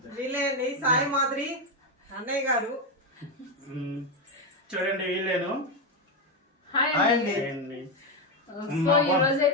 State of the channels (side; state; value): both; normal; correlation 0.08